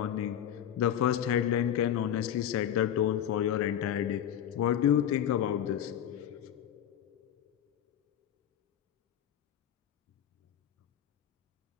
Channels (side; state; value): right; quieter; 10.1 dB